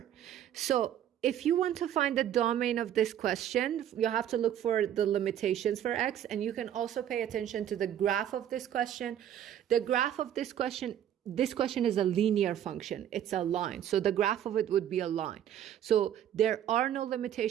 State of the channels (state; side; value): quieter; left; 10.6 dB